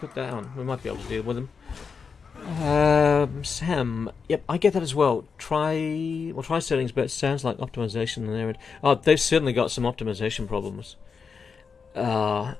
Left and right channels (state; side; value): quieter; right; 5.6 dB